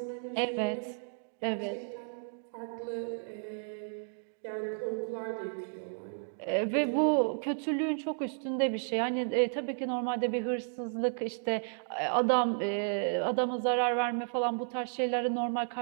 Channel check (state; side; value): silent; left; digital silence